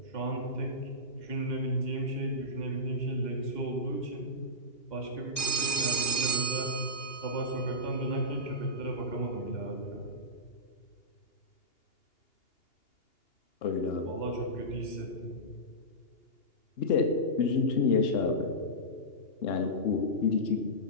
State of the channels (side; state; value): right; late; 2.5 ms